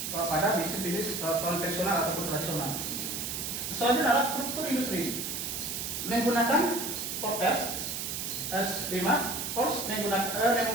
pada bisnis konvensional ataupun tradisional. Selanjutnya adalah struktur industri. Menggunakan forecast S5,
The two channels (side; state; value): right; noise; hiss, 4 dB below the sound